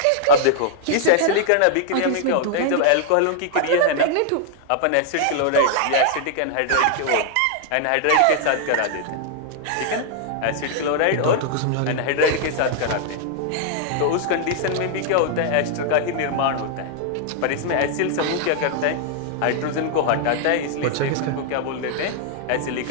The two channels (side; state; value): both; different; correlation 0.00